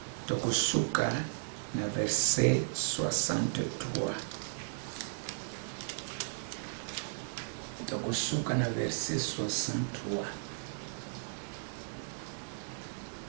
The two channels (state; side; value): silent; left; digital silence